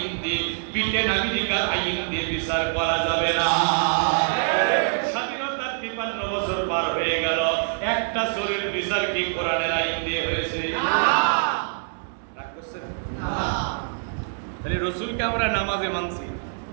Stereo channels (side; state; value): left; silent; digital silence